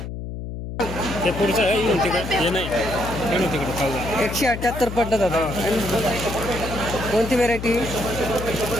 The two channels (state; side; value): noise; left; hum, 7 dB below the sound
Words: ते पुढचं आहे येऊन तिकडे हे नाही येऊन तिकडे खाऊ 178 पडलं दादा कोणती व्हेरायटी